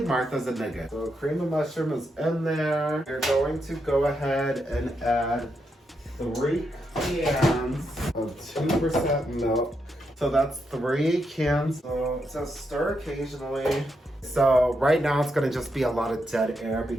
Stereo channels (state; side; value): normal; both; correlation 0.82